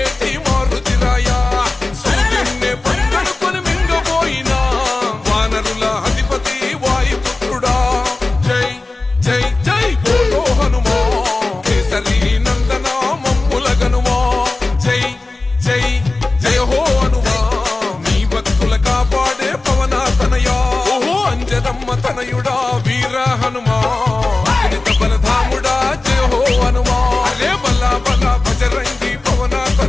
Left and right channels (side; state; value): right; quieter; 3.3 dB